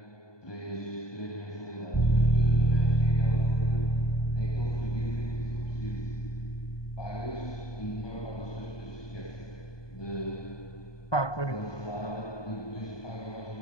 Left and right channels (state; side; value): late; right; 1.2 ms